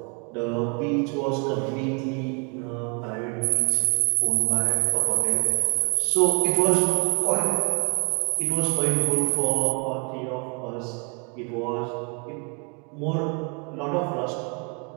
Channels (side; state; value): left; quieter; 36.0 dB